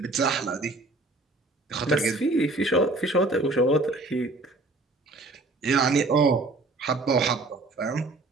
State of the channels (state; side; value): quieter; left; 3.0 dB